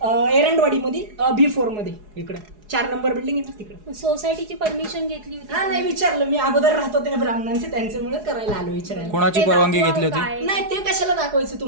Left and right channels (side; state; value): left; late; 4.8 ms